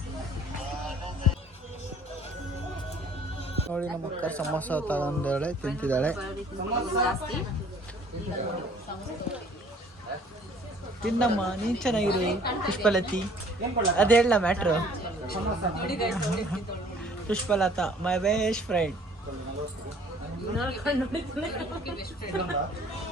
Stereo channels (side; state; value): both; normal; correlation 0.55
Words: ನೋಡಿ ನಮ್ಮ ಅಕ್ಕ ಸಮೋಸ ತಗೊಂಡಾಳೆ, ತಿಂತಿದ್ದಾಳೆ. ತಿನ್ನಮ್ಮ, ನೀನ್ ಚೆನ್ನಾಗಿರು ಪುಷ್ಪಲತಿ. ಅದ್ ಹೇಳ matter. Pushpalatha my best friend.